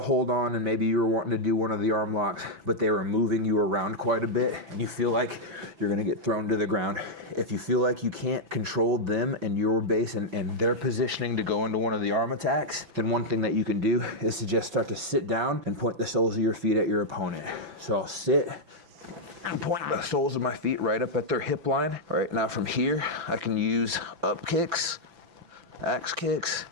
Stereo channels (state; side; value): late; left; 6.0 ms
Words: on and maybe you were wanting to do one of the arm locks, but they were moving you around quite a bit and you feel like you're gonna get thrown to the ground. If you feel like you can't control them and your base and their positioning to go into one of the arm attacks, then one thing that you can do is to just start to sit down and point the soles of your feet at your opponent. So I'll sit, and point the soles of my feet right up at their hip line. All right, now from here, I can use up kicks, axe kicks,